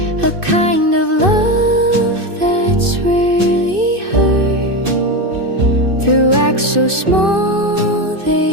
a kind of love that's rarely heard. Through acts so small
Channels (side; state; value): left; late; 2.6 ms